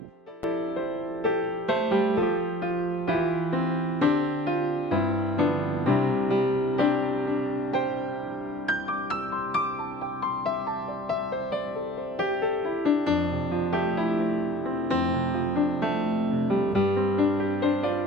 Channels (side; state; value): both; normal; correlation 0.46